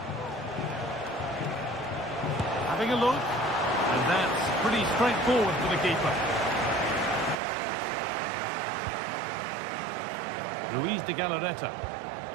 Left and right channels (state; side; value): drops out; left; at 7.4 s